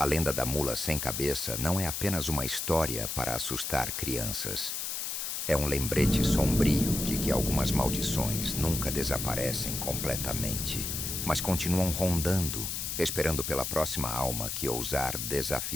lenda da mula sem cabeça não é apenas uma história para assustar crianças. É um lembrete sombrio de que algumas maldições nunca desaparecem completamente, mas continuam rondando, esperando pela próxima alma que ousar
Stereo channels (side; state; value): left; noise; hiss, 3 dB below the sound